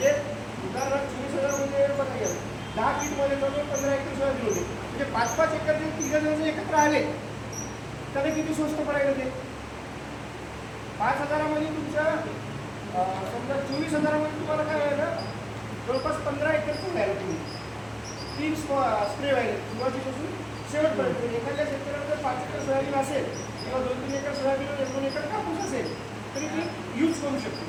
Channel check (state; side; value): identical; both; correlation 1.00